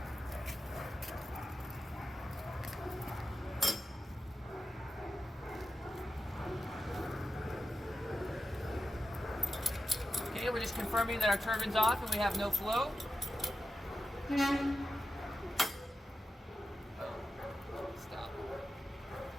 Okay, we're just confirming that our turbine's off and we have no flow. Stop.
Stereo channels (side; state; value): both; normal; correlation 0.91